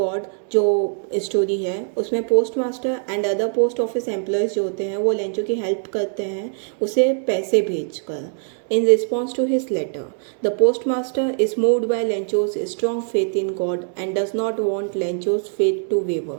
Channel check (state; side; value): silent; left; 64 dB below the other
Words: जो story है उसमें postmaster and other post office employees जो होते हैं वो Lencho की help करते हैं उसे पैसे भेजकर। In response to his letter, the postmaster is moved by Lencho's strong faith in God and does not want Lencho's faith to waver.